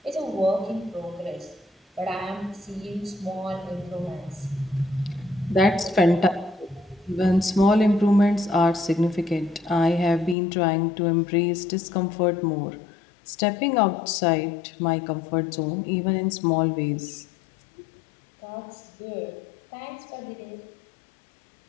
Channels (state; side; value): drops out; right; at 10.4 s